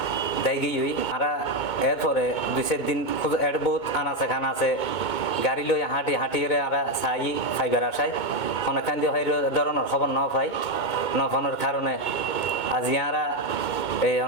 দেয় গিয়ে আরা এরপরে 2-4 দিন এর বহুত আনাচে খানা আছে গাড়ি লই হাঁটিয়ে আরা চাই ফাইবার আসায় অনেকখান দিয়ে ধরনের খবর ন পাই নফানোর কারণে আজি আরা এই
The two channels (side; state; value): right; late; 2.2 ms